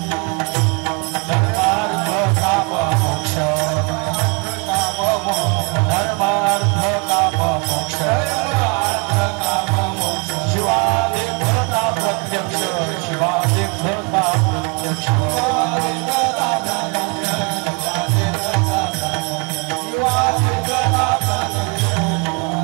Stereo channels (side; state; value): left; quieter; 32.1 dB